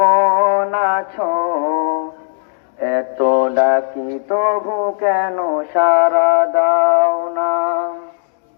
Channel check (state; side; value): silent; right; digital silence